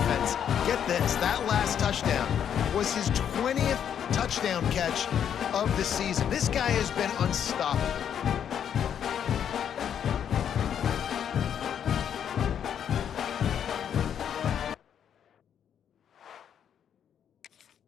Get this, that last touchdown was his 20th touchdown catch of the season. This guy has been unstoppable.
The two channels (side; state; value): right; quieter; 8.8 dB